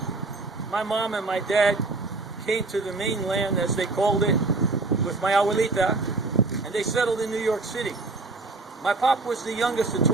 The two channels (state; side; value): quieter; left; 3.5 dB